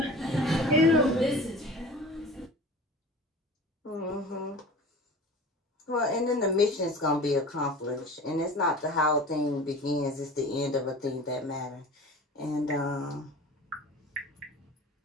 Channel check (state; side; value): normal; both; correlation 0.39